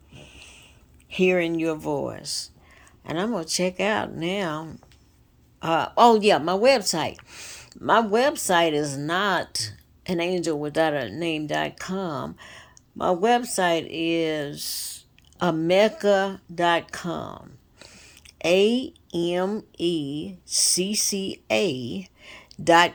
Hearing Your Voice. And I'm gonna check out now. My website. My website is not anangelwithoutaname.com. My website is amecca.com.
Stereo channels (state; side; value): identical; both; correlation 1.00